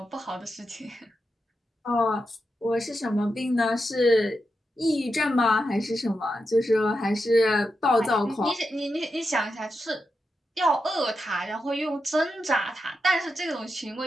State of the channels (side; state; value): both; normal; correlation 0.87